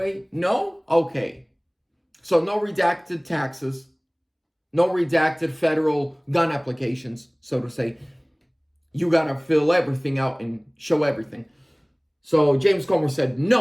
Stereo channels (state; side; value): identical; both; correlation 1.00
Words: No? Okay. So no redacted taxes, no redacted federal gun applications, so to say. You got to fill everything out and show everything. So James Comer said,